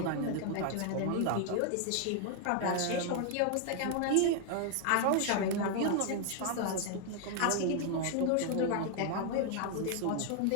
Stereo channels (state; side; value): different; both; correlation 0.00